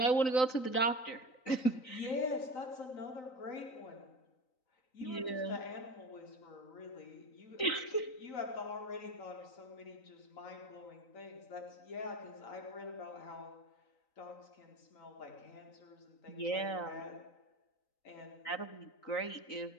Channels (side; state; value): right; late; 3.9 ms